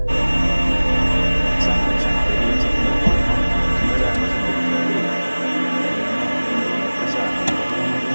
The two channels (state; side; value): inverted; both; correlation -1.00